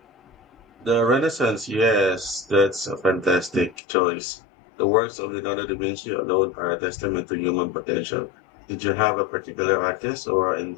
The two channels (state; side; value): drops out; right; at 3.8 s